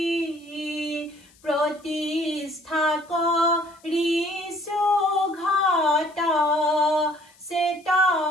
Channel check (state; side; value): noise; left; hiss, 29 dB below the sound